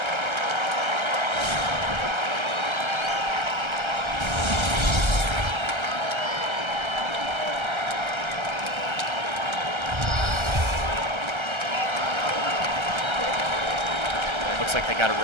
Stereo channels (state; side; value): late; left; 1.3 ms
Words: Looks like they got a